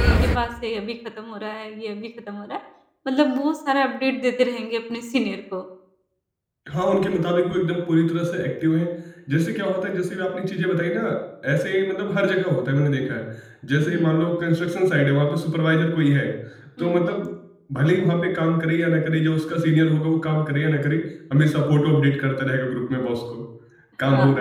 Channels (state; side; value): identical; both; correlation 1.00